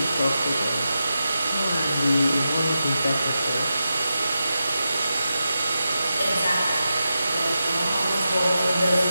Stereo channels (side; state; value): both; inverted; correlation -0.90